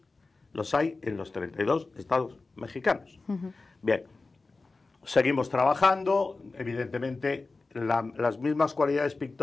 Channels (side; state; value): right; quieter; 3.7 dB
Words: los hay en los 32 estados mexicanos. Bien, seguimos trabajando, evidentemente las mismas cualidades